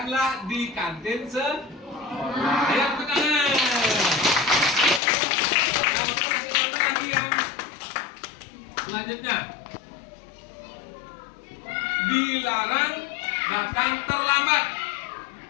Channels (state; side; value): drops out; right; at 5.0 s